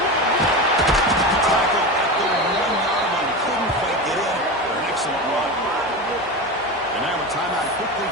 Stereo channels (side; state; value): both; normal; correlation 0.23